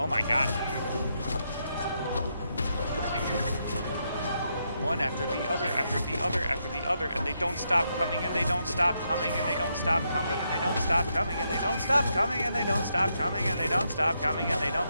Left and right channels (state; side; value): inverted; both; correlation -0.80